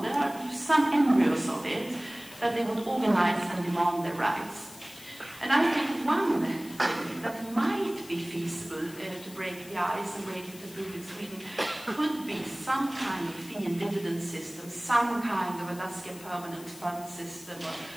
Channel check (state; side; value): noise; left; hiss, 18 dB below the sound